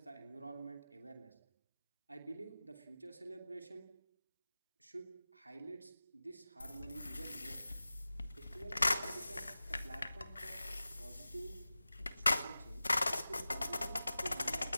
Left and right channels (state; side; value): inverted; both; correlation -0.96